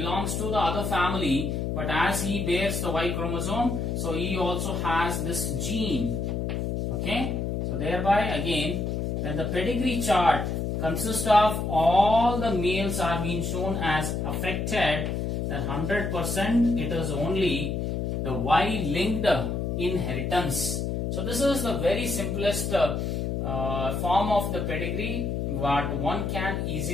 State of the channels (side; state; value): left; noise; hum, 1 dB below the sound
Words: to the other family, but as he bears the Y chromosome, so he also has this gene. Okay, so thereby again, when the pedigree chart consists of all the males are being shown as affected, then 100% it is only the Y-linked inheritance. So this is the very simplest form of the pedigree what one can